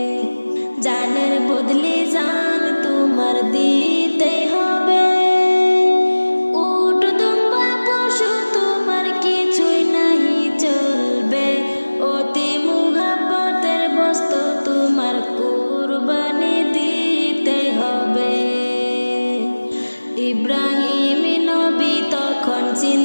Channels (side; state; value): both; inverted; correlation -1.00